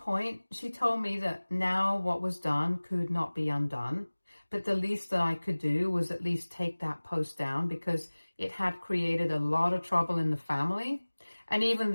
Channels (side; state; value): both; inverted; correlation -1.00